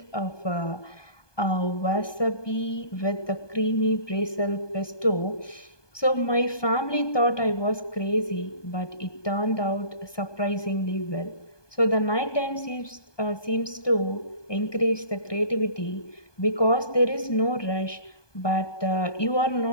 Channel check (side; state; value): right; late; 1.2 ms